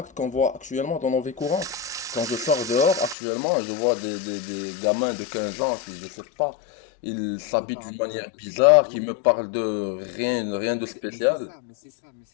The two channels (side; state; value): right; drops out; at 3.2 s